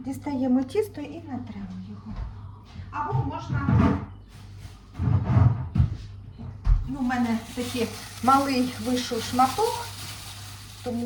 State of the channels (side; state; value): both; identical; correlation 1.00